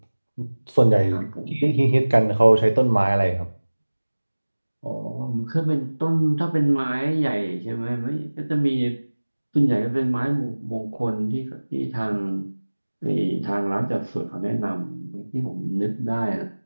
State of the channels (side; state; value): both; inverted; correlation -1.00